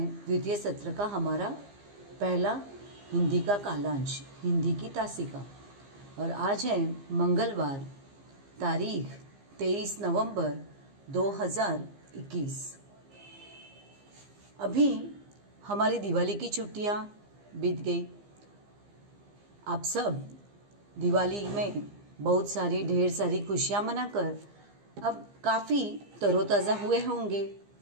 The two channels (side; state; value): left; late; 15 ms